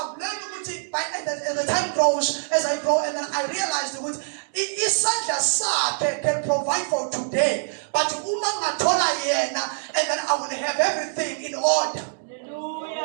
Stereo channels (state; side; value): silent; left; digital silence